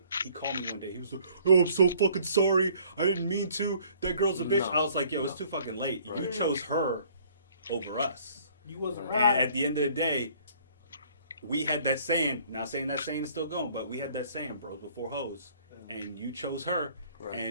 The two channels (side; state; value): both; inverted; correlation -0.57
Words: he called me one day. He was like, "Oh, I'm so fucking sorry. I didn't mean to. That girl's a bitch." No. I was like, "Yo, it's too fucking late. Right. You chose her over us. You wasn't right." And at the end of the day, we had that saying. Not saying that saying is still going, but we had that saying, bros before hoes. And you chose her, right.